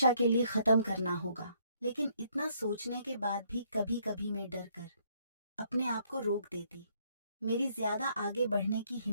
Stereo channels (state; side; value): inverted; both; correlation -0.68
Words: के लिए खत्म करना होगा। लेकिन इतना सोचने के बाद भी कभी कभी मैं डर कर अपने आप को रोक देती। मेरी ज्यादा आगे बढ़ने की